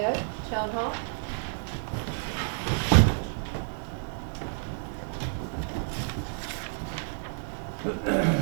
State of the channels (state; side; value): silent; left; digital silence